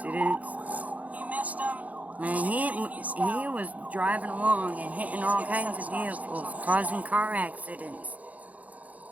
You missed him. Man, he was driving along and hitting all kinds of vehicles, causing car accidents.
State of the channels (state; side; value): late; left; 0.073 ms